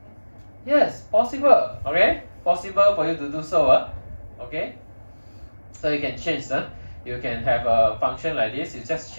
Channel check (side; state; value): both; inverted; correlation -1.00